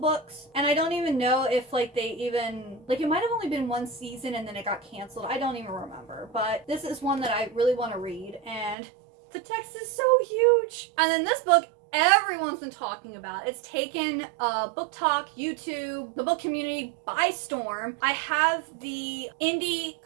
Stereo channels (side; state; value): left; drops out; at 8.8 s